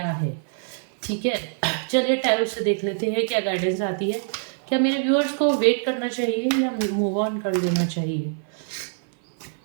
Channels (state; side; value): silent; left; 59 dB below the other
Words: है, ठीक है। चलिए टैरो से देख लेते हैं क्या गाइडेंस आती है। क्या मेरे व्यूअर्स को वेट करना चाहिए या मूव ऑन कर देना चाहिए?